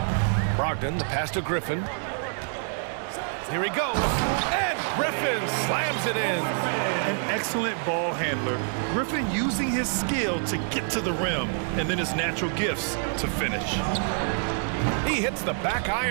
Brogdon, the pass to Griffin. Here he goes. And Griffin slams it in. An excellent ball handler. Griffin using his skill to get to the rim, and then his natural gifts to finish. He hits the back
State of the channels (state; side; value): silent; left; 60 dB below the other